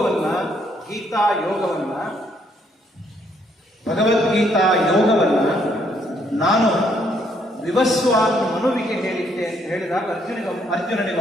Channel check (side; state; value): both; normal; correlation 0.70